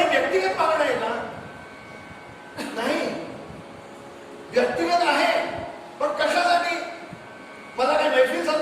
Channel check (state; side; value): identical; both; correlation 1.00